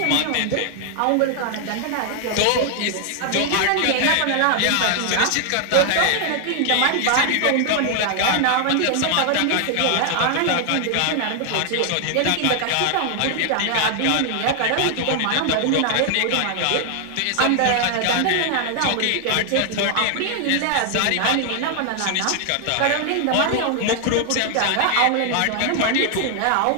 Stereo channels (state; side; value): different; both; correlation 0.00